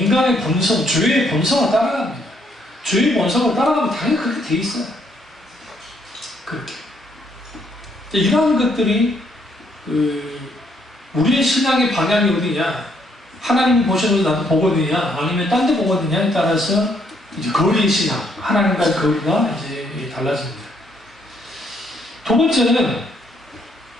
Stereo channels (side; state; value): both; normal; correlation 0.71